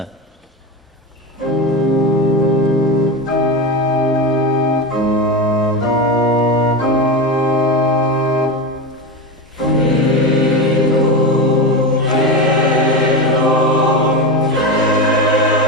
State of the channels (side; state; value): both; normal; correlation 0.19